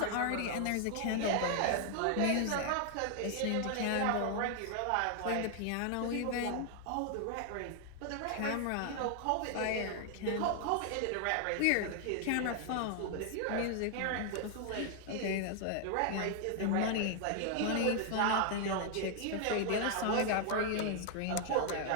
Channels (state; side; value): different; both; correlation 0.00